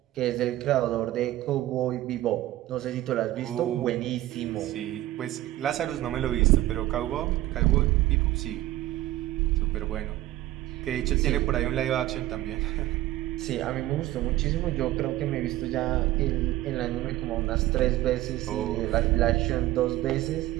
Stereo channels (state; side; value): quieter; left; 15.6 dB